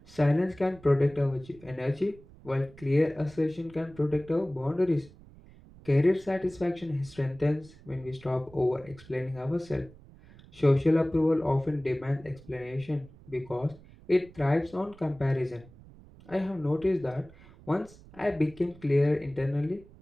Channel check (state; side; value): noise; right; rumble, 22 dB below the sound